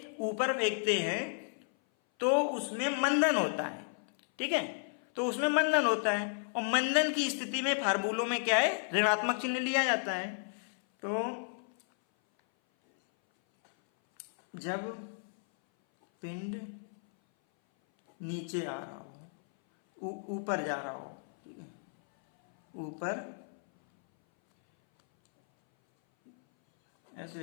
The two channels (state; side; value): silent; right; 56 dB below the other